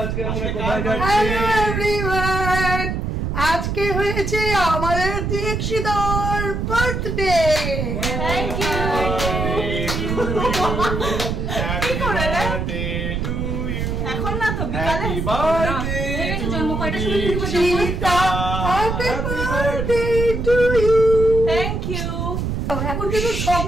আজকে আমরা কোথায় যাচ্ছি? হ্যালো এভরিওয়ান, আজকে হয়েছে আমাদের দীক্ষিতার birthday. Thank you. Happy birthday to you. এখন না তো বিকালে হ্যাপি বার্থডে টু দীক্ষিতা। Happy birthday to you. Thank you. এখন কিন্তু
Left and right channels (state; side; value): noise; right; rumble, 2 dB below the sound